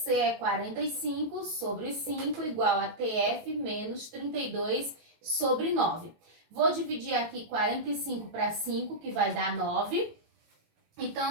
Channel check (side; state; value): left; late; 19 ms